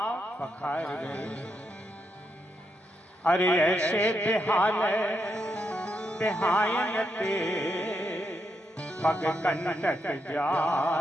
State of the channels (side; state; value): both; normal; correlation 0.81